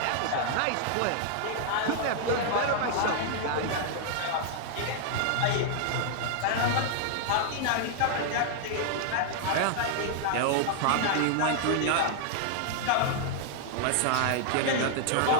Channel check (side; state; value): both; different; correlation -0.01